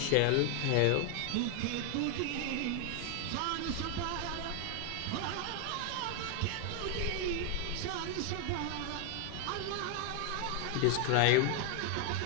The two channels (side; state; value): both; different; correlation 0.00